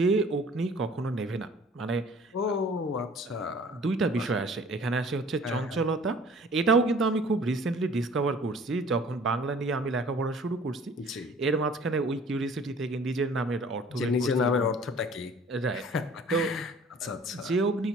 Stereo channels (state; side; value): normal; both; correlation 0.51